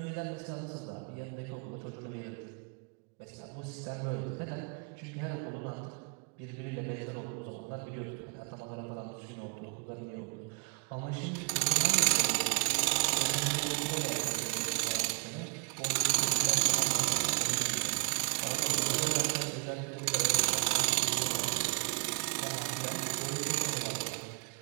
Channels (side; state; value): left; quieter; 35.9 dB